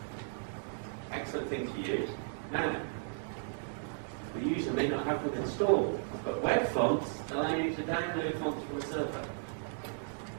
excellent thing to use. Now, the user may not have them installed, but web fonts allow you to download fonts from a server.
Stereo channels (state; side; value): silent; left; digital silence